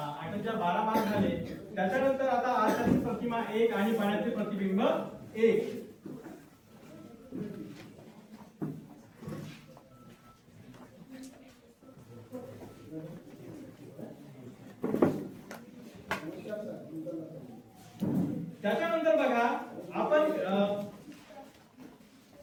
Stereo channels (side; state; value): both; identical; correlation 1.00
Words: 8 12 मार्क झाले. त्याच्यानंतर आता आरशातील प्रतिमा 1 आणि पाण्यातील प्रतिबिंब 1. त्याच्यानंतर बघा, आपण